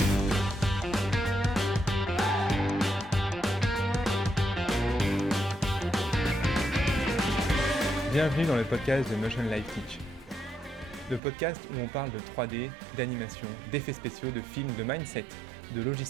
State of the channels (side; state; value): left; drops out; at 11.2 s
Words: Bienvenue dans le podcast de Motion Life Teach. Le podcast où on parle de 3D, d'animation, d'effets spéciaux, de films, de mindset, de